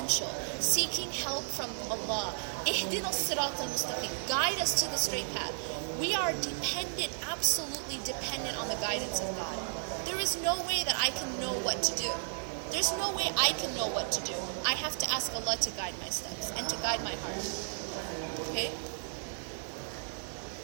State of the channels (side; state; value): left; silent; digital silence